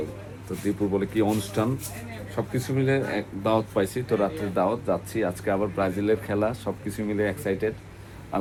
তো দীপুর বলে কি অনুষ্ঠান, সব কিছু মিলে এক দাওয়াত পাইছি, তো রাত্রে দাওয়াত যাচ্ছি। আজকে আবার ব্রাজিলের খেলা, সব কিছু মিলে এক্সাইটেড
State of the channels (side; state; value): both; identical; correlation 1.00